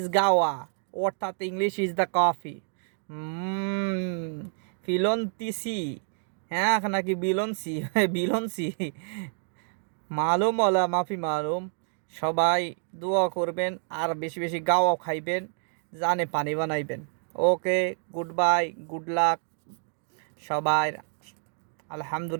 গাওয়া অর্থাৎ ইংলিশ ইজ দ্য কফি। ফিলন্তিসি হ্যাঁ নাকি বিলনসি বিলনসি মালুম ওলা মাফি মালুম। সবাই দোয়া করবেন আর বেশি বেশি গাওয়া খাইবেন, জানে পানি বানাইবেন। ওকে, গুড বাই, গুড লাক সবাই।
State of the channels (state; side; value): silent; left; digital silence